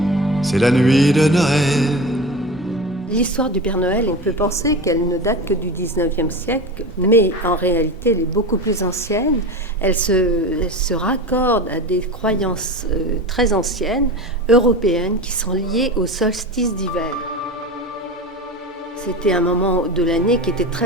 C'est la nuit de Noël. L'histoire du Père Noël, on peut penser qu'elle ne date que du 19e siècle, mais en réalité, elle est beaucoup plus ancienne. Elle se raccorde à des croyances très anciennes, européennes, qui sont liées au solstice d'hiver. C'était un moment de l'année qui était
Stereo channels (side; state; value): both; normal; correlation 0.28